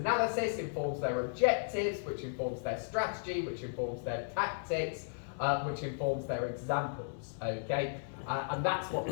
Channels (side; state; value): right; silent; digital silence